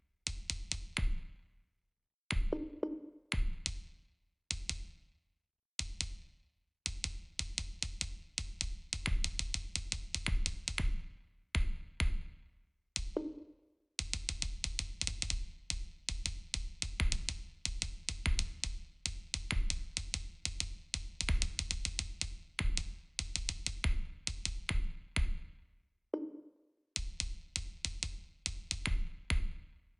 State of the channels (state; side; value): identical; both; correlation 1.00